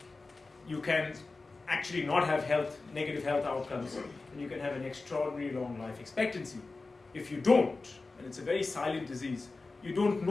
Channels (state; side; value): quieter; right; 3.7 dB